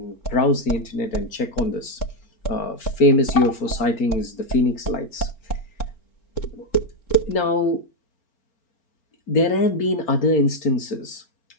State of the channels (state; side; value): late; right; 4.4 ms